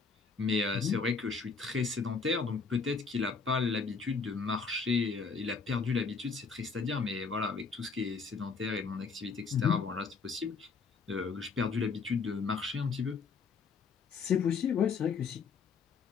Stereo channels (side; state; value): right; quieter; 5.1 dB